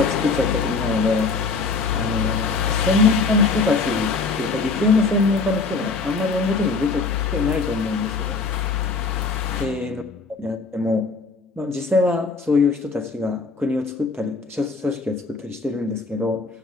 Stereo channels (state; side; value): quieter; right; 4.2 dB